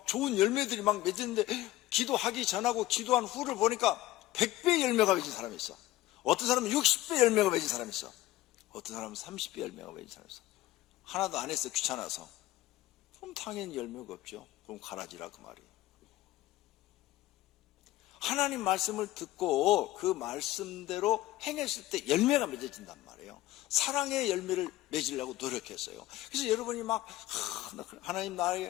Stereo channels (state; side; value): quieter; right; 16.1 dB